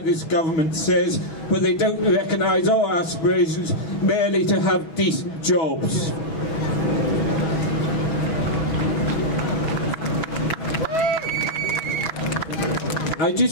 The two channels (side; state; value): right; late; 6.1 ms